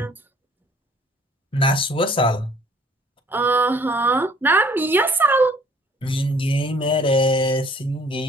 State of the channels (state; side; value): normal; both; correlation 0.57